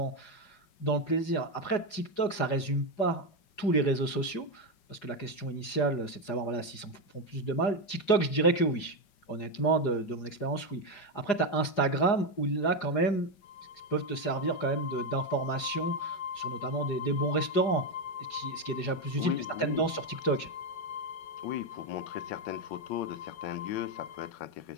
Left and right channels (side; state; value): right; late; 4.9 ms